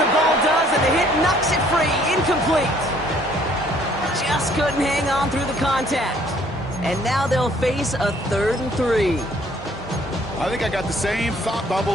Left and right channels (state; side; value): normal; both; correlation 0.61